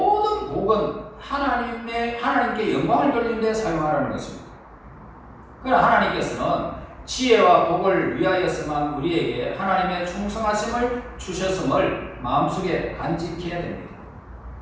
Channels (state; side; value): identical; both; correlation 1.00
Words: 복은 하나님께 영광을 돌리는 데 사용하라는 것입니다. 그러나 하나님께서는 지혜와 복을 위하여서만 우리에게 하나님의 충성하심을 주셨음을 마음속에 간직해야 됩니다.